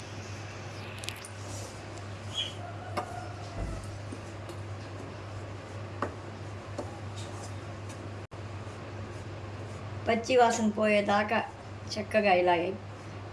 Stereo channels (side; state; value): both; identical; correlation 1.00